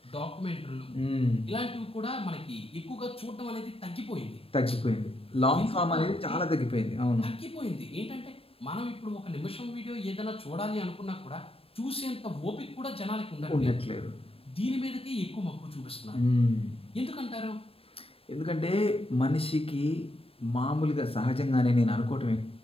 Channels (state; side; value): late; right; 0.28 ms